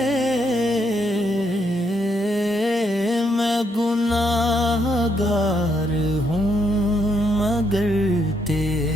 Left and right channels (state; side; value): normal; both; correlation 0.75